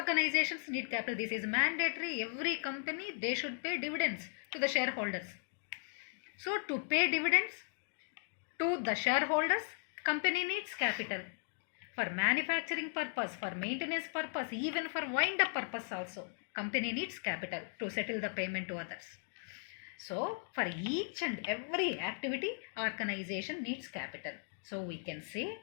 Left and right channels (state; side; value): silent; right; digital silence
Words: need capital. This is mandatory. Every company, they should pay dividends to the shareholders. So to pay dividends to the shareholders, company needs capital. For manufacturing purpose, for maintenance purpose, even for wind up purpose also, company needs capital to settle the payment to others. So for each and every activity, organization needs capital. So we can say